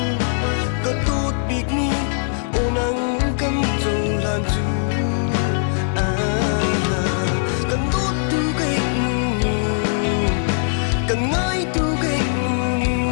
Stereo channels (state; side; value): silent; right; digital silence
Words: có tốt biết ni ô nắng cắm dầu lan du cần tốt tu cái cần ngay tu cái